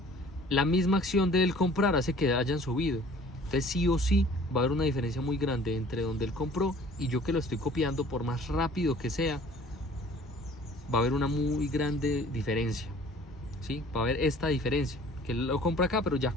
la misma acción de él comprar hace que hayan subido. Entonces sí o sí va a haber una diferencia muy grande entre donde él compró y yo que lo estoy copiando, por más rápido que sea, va a haber una muy grande diferencia. ¿Sí? Va a haber esta diferencia, que él lo compra acá, pero ya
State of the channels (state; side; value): normal; both; correlation 0.51